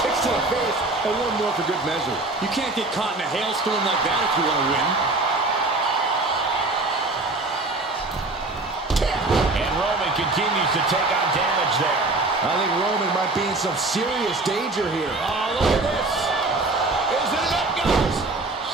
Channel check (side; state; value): left; quieter; 3.1 dB